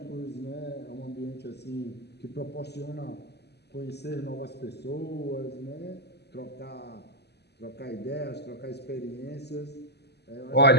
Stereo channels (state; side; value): late; right; 0.49 ms